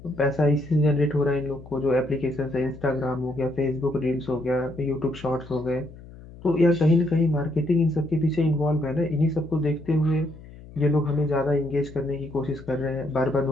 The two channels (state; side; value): noise; left; hum, 18 dB below the sound